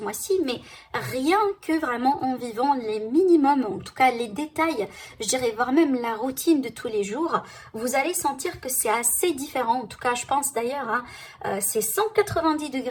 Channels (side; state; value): both; identical; correlation 1.00